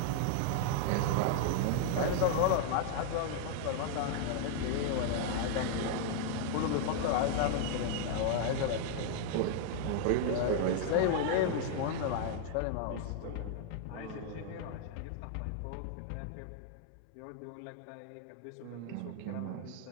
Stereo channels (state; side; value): different; both; correlation -0.01